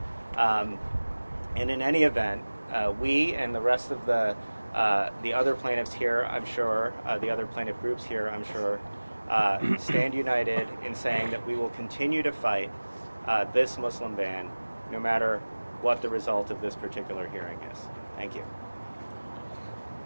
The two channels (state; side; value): inverted; both; correlation -1.00